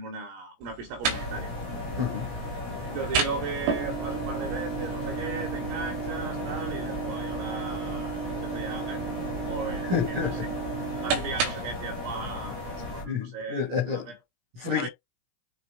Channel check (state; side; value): late; left; 17 ms